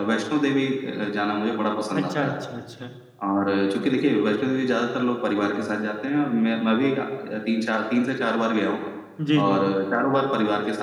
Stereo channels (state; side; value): identical; both; correlation 1.00